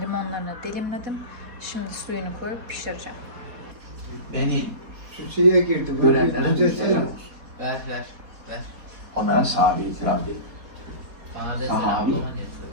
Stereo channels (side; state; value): left; late; 4.2 ms